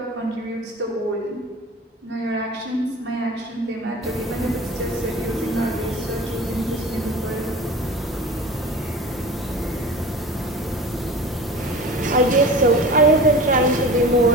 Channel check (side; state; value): both; normal; correlation 0.37